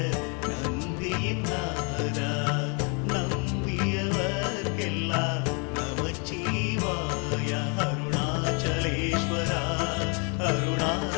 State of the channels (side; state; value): right; quieter; 34.7 dB